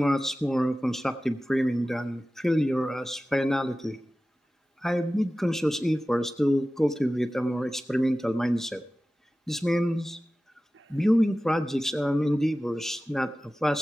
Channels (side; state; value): both; normal; correlation 0.96